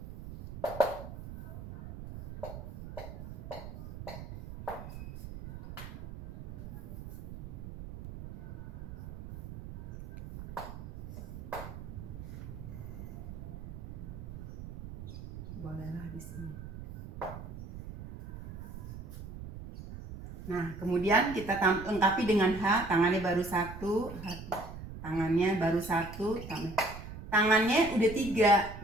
Bolehlah di sini. Nah, kemudian kita lengkapi dengan H, tangannya baru 1, tangannya baru 1, tangannya udah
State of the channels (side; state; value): right; noise; rumble, 10 dB below the sound